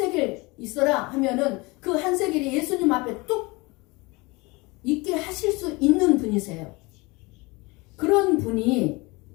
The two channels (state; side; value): quieter; right; 24.7 dB